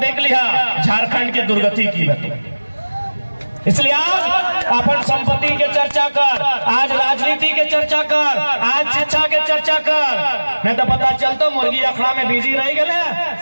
लिया झारखंड के दुर्गति की। इसलिए आज अपन संपत्ति के चर्चा कर आज राजनीति के चर्चा कर आज शिक्षा के चर्चा कर नहीं तो पता चलता मुर्गी अखड़ा में बिजी रह गए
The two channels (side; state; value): both; inverted; correlation -1.00